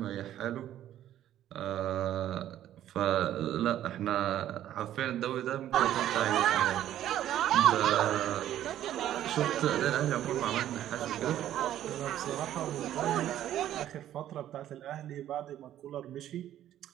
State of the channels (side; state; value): left; quieter; 12.0 dB